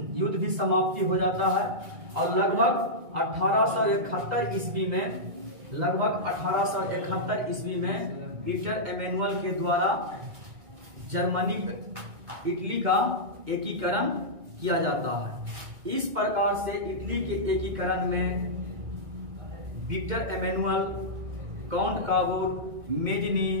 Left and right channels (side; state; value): left; late; 2.1 ms